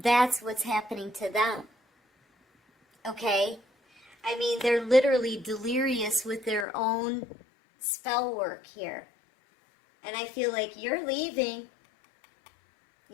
that's what's happening to them. Okay? I mean, they're literally delirious with their own spell work here. And I feel like you're leaving.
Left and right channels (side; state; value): right; drops out; at 6.7 s